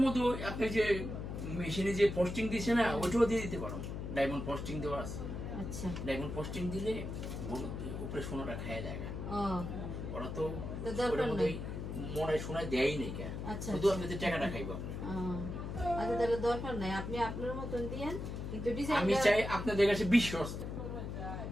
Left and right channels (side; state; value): left; noise; hum, 5 dB below the sound